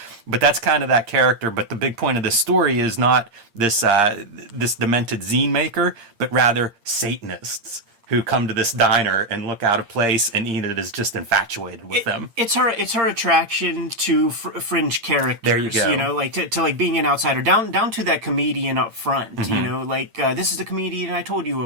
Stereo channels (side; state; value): left; late; 8.7 ms